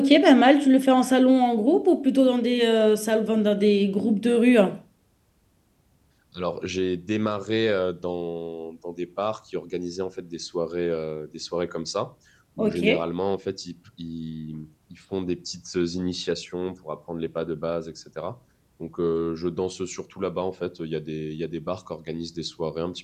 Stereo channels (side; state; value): both; identical; correlation 1.00